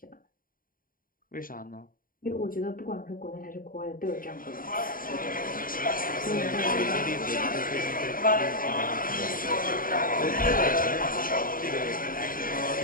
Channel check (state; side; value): late; right; 0.41 ms